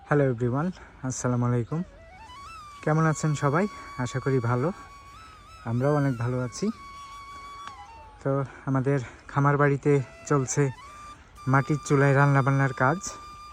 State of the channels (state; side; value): identical; both; correlation 1.00